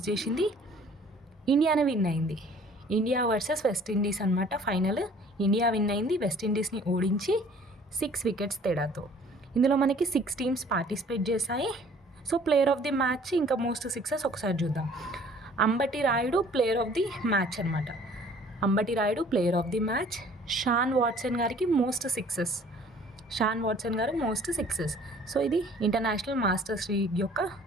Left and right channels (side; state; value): both; normal; correlation 0.53